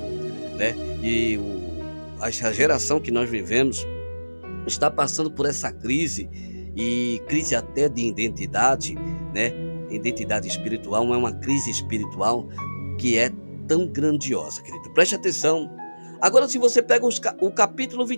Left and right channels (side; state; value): both; inverted; correlation -1.00